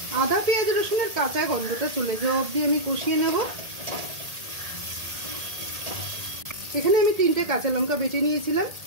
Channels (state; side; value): late; left; 1.8 ms